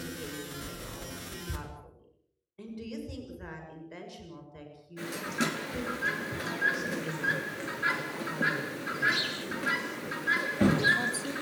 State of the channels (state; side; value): identical; both; correlation 1.00